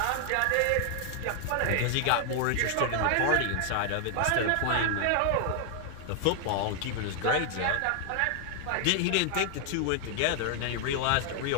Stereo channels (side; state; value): both; different; correlation 0.00